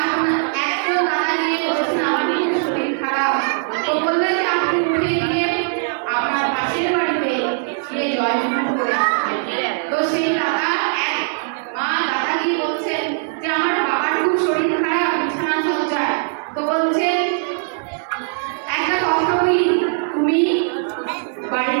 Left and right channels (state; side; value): silent; left; 58 dB below the other